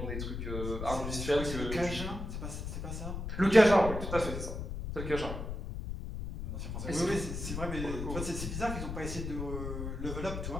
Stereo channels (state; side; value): noise; left; rumble, 5 dB below the sound